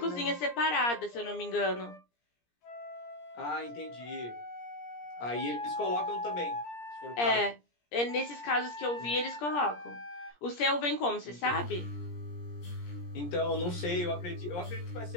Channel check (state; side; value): late; right; 17 ms